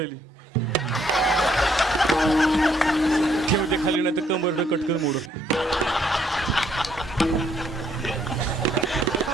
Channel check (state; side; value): normal; both; correlation 0.69